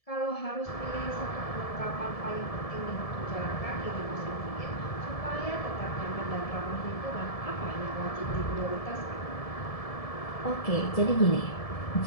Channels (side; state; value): right; late; 1.7 ms